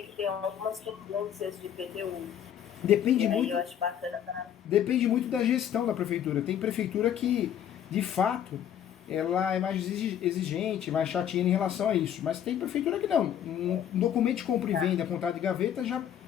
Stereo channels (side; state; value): right; quieter; 9.8 dB